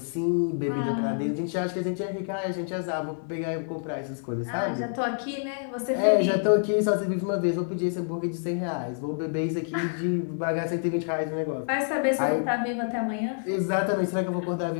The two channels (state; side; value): silent; right; digital silence